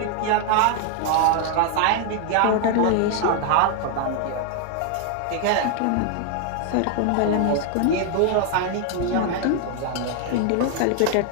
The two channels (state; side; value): different; both; correlation 0.00